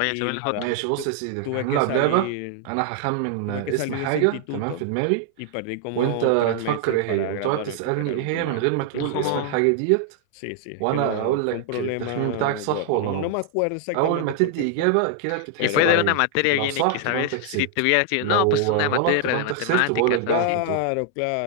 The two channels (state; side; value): different; both; correlation 0.00